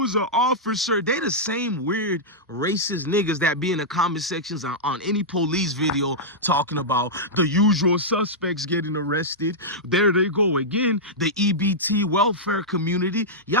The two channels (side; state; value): both; normal; correlation -0.09